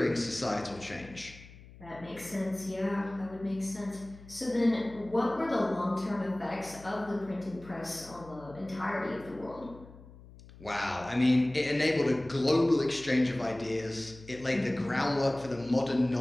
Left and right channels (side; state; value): left; noise; hum, 20 dB below the sound